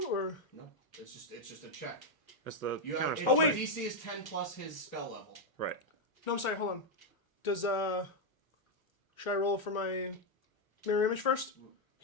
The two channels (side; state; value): right; late; 1.1 ms